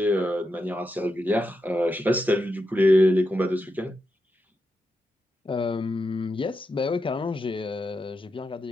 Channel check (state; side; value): normal; both; correlation 0.86